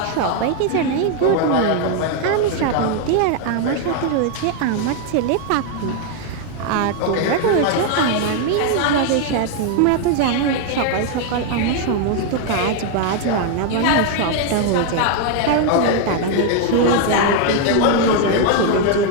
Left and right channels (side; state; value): both; different; correlation 0.00